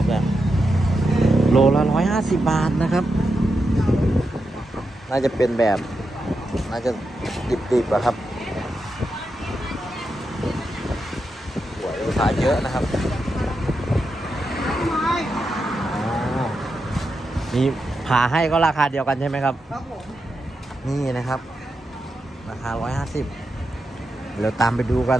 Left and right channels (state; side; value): normal; both; correlation 0.87